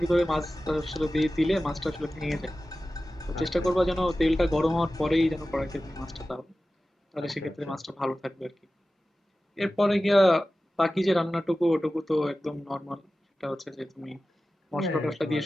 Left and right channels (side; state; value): both; normal; correlation 0.95